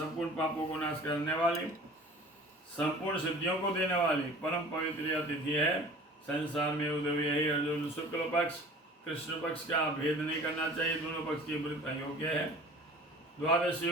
पापों को नाश करने वाली, संपूर्ण सिद्धियों को देने वाली परम पवित्र यह तिथि है। संसार में उदय यही अर्जुन शुक्ल पक्ष कृष्ण पक्ष का भेद नहीं करना चाहिए, दोनों पक्ष की व्रत अयोग्य है। द्वादशी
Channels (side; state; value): both; normal; correlation 0.44